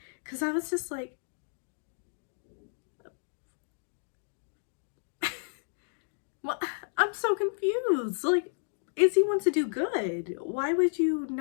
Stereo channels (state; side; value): silent; right; digital silence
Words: Because I was just like, well, I'm so confused. Like, Izzy wants to do good. Why would you